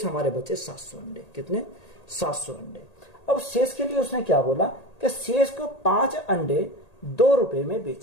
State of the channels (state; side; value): late; right; 1.8 ms